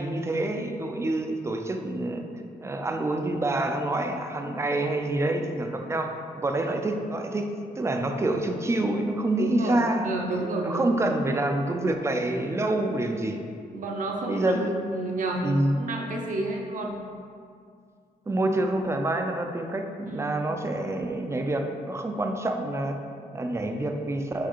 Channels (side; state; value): both; normal; correlation 0.76